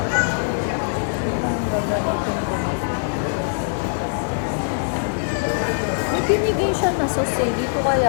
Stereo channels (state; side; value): silent; right; digital silence